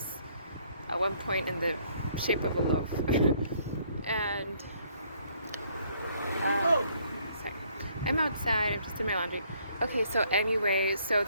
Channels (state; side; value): inverted; both; correlation -0.65